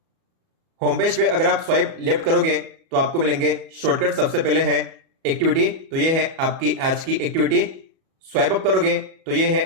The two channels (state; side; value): late; left; 37 ms